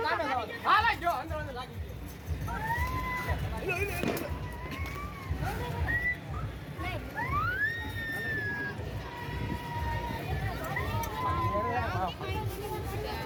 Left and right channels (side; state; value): both; identical; correlation 1.00